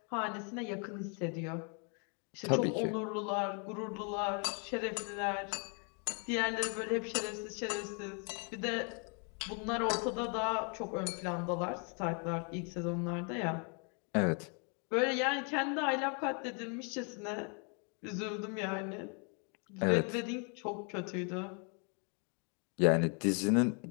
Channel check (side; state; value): right; quieter; 37.8 dB